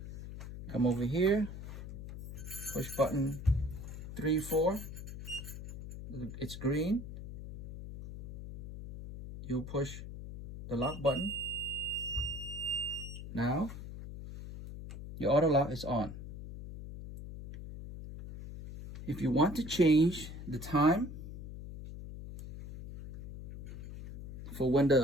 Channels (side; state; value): left; noise; hum, 10 dB below the sound